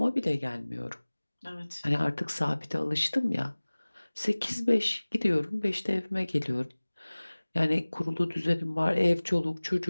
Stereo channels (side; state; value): both; inverted; correlation -1.00